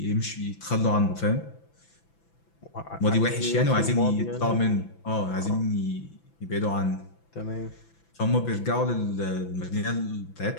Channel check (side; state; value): right; late; 6.0 ms